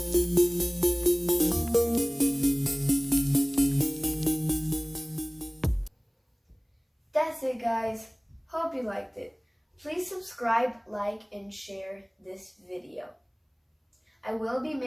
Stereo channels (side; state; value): both; identical; correlation 1.00